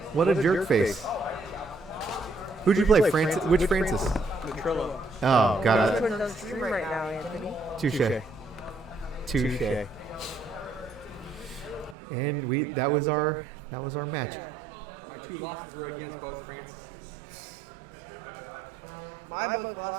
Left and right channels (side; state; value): left; drops out; at 12.0 s